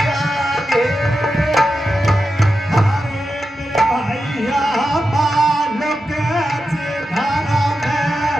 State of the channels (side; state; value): both; normal; correlation 0.90